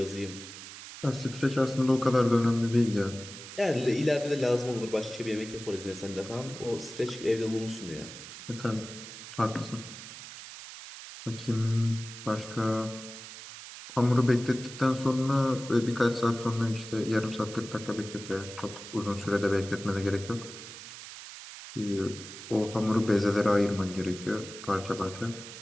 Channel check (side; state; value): right; noise; hiss, 13 dB below the sound